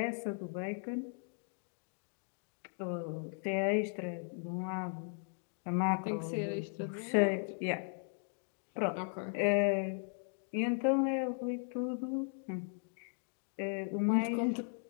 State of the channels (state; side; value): silent; right; 53 dB below the other